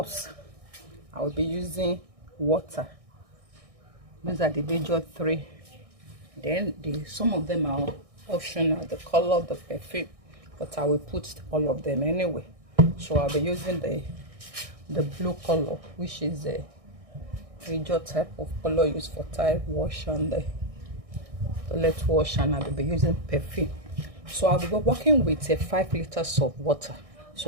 I will be using water. These are the major three. Then some of them are optional, the color, the perfume, but I will put all of them anyway. So I'll be using the blue color, which is a major type of color used for tile wash and the toilet wash, and I'll be using perfume. So I'll be working with 5 liters of water.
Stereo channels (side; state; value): left; late; 1.6 ms